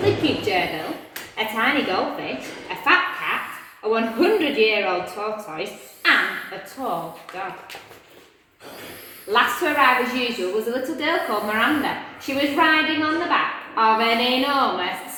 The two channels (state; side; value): identical; both; correlation 1.00